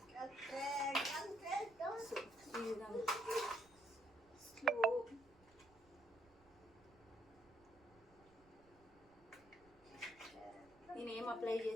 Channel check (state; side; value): noise; right; rumble, 28 dB below the sound